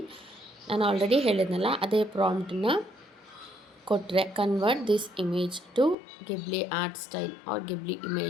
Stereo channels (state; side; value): drops out; right; at 6.0 s